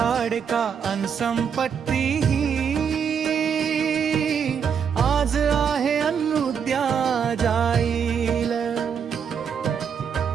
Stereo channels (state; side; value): quieter; left; 7.2 dB